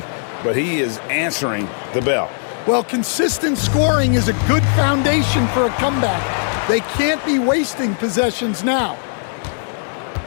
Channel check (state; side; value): silent; right; 64 dB below the other